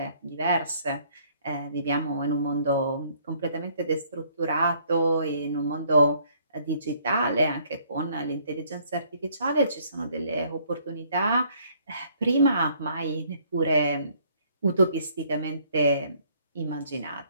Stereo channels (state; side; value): inverted; both; correlation -0.63